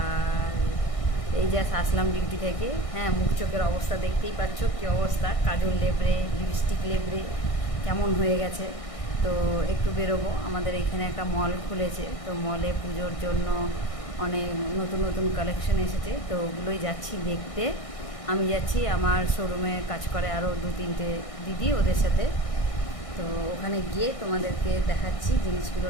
এই জাস্ট আসলাম ডিউটি থেকে। হ্যাঁ, মুখ চোখের অবস্থা দেখতেই পাচ্ছ কী অবস্থা, কাজল লেবড়ে, লিপস্টিক লেবড়ে কেমন হয়ে গেছে। তো একটু বেরোবো। আমাদের এখানে একটা মল খুলেছে, তো মলে পুজোর জন্য অনেক নতুন নতুন কালেকশন এসেছে, তো ওগুলোই যাচ্ছি দেখতে। আমি যাচ্ছি, আমার শোরুমে কাজ করে আরও 2-3টে দিদি, ওদের সাথে। তো ওখানে গিয়ে তোমাদেরকে দেখাচ্ছি জিনিসগুলো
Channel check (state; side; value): late; right; 1.6 ms